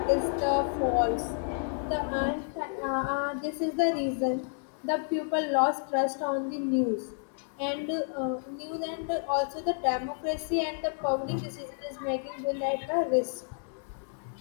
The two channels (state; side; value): silent; right; 58 dB below the other